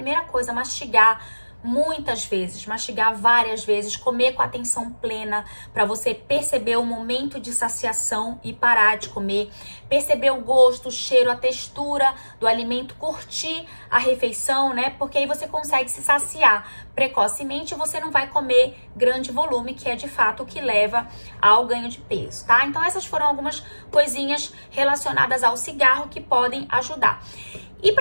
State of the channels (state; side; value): inverted; both; correlation -1.00